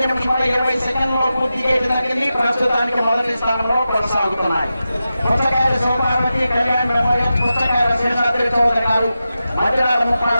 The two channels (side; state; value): both; inverted; correlation -0.92